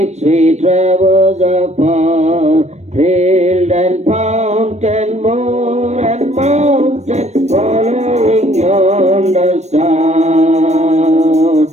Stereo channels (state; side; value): late; left; 0.32 ms